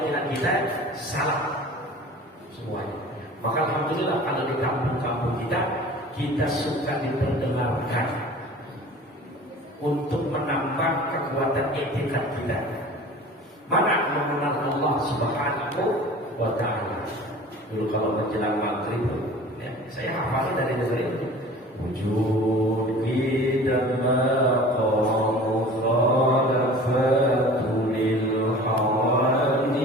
kita salah semuanya. Maka alhamdulillah kalau di kampung-kampung kita suka diperdengarkan untuk menambah kekuatan etika kita. Mana mengenal Allah Subhanahu wa Ta'ala. Dulu kalau menjelang maghrib, ya, saya hafalnya dari negeri wujud kita maqamu khalafatu lil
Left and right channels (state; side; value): normal; both; correlation 0.42